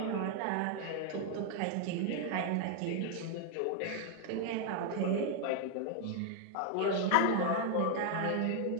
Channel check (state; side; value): different; both; correlation 0.00